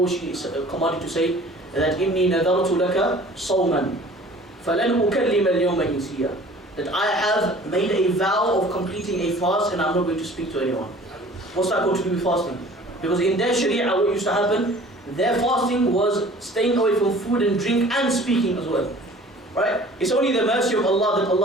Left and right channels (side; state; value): both; normal; correlation 0.48